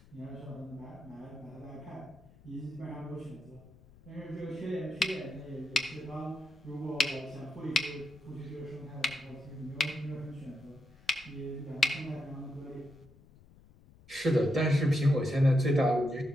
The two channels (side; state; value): left; noise; rumble, 24 dB below the sound